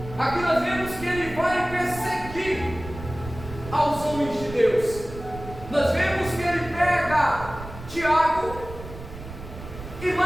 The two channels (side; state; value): right; noise; rumble, 13 dB below the sound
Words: Aqui nós vemos que ele vai perseguir aos homens de Deus. Nós vemos que ele pega Tiago e